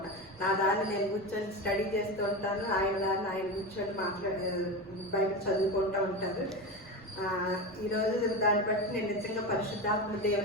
నా దాన్ని నేను కూర్చొని స్టడీ చేస్తూ ఉంటాను, ఆయన దాన్ని ఆయన కూర్చొని బైబిల్ చదువుకుంటూ ఉంటారు. ఈరోజు దాన్ని బట్టి నేను నిజంగా పరిశుద్ధాత్మ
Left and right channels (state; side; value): noise; right; rumble, 25 dB below the sound